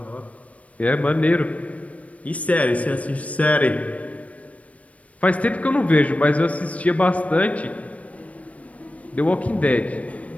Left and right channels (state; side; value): late; right; 0.066 ms